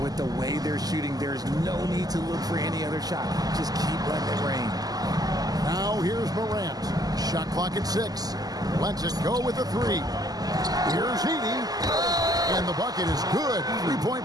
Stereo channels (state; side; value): late; left; 0.18 ms